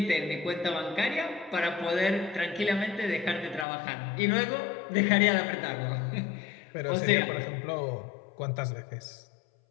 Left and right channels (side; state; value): right; drops out; at 3.7 s